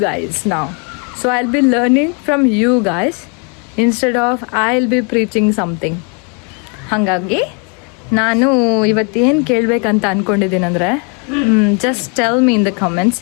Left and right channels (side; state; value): right; quieter; 36.7 dB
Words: guys now. So I'll be learning from you guys instead of I'll be preaching something. ಹಾಗಾಗಿ ನಾನು ಇವತ್ತೇನು ಕೇಳಬೇಕಂತ ಅಂದ್ಕೊಂಡಿದ್ದೀನಿ ಅಂದರೆ, just tell me in the comments